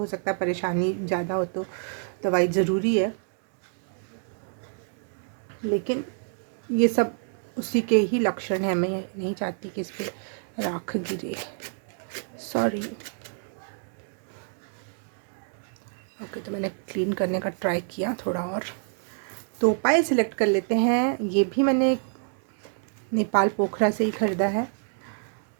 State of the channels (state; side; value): silent; left; digital silence